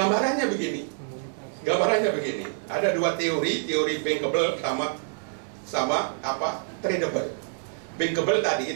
begini. Ada dua teori bankable sama tradable. Bankable tadi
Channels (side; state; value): left; silent; 60 dB below the other